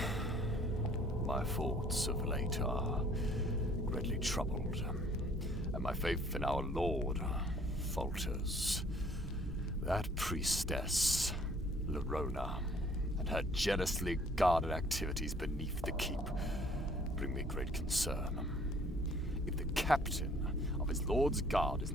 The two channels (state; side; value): normal; both; correlation 0.58